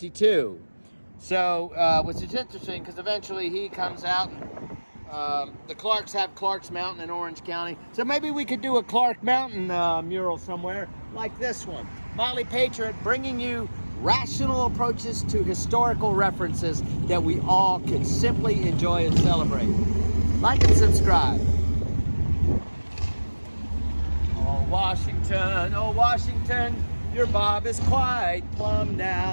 So, which is interesting because eventually he comes out. The Clarks have Clark's Mountain in Orange County. So maybe we could do a Clark Mountain mural somewhere like this one. Motley Patriot bringing you rational approaches to historical references that we all can simply enjoy and celebrate. Like and subscribe. Oh Washington, your bob is quite plumb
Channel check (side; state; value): both; inverted; correlation -1.00